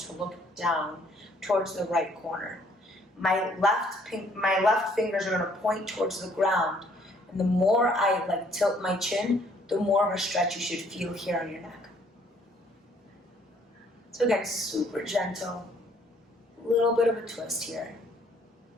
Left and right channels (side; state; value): both; normal; correlation 0.63